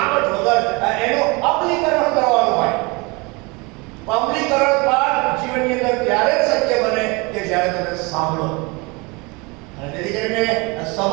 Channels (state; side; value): quieter; left; 27.1 dB